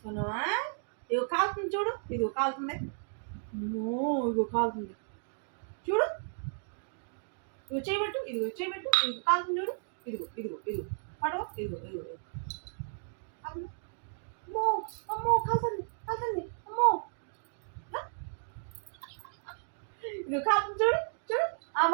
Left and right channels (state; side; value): silent; left; digital silence